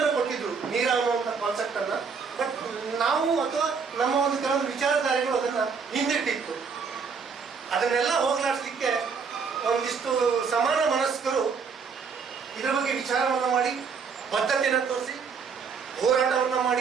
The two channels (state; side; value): quieter; left; 5.7 dB